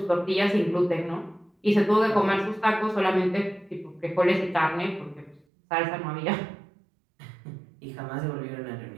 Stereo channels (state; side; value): drops out; left; at 5.5 s